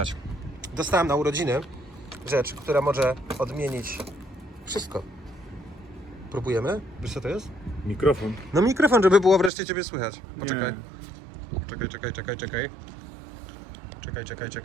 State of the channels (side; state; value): left; drops out; at 9.5 s